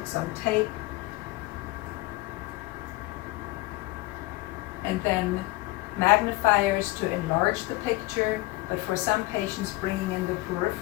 on tape, and then magnifiers to enlarge the picture, but for some patients bringing in the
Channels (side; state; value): right; quieter; 20.4 dB